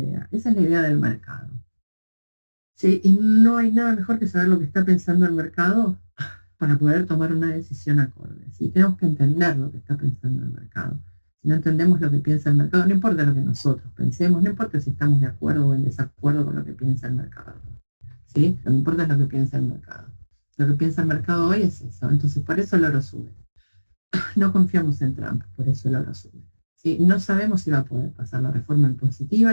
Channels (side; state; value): both; inverted; correlation -1.00